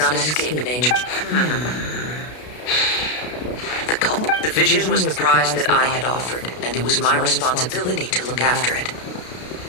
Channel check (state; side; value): late; right; 33 ms